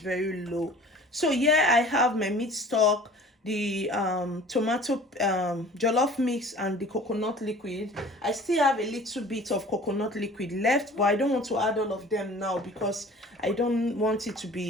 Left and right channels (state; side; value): normal; both; correlation 0.46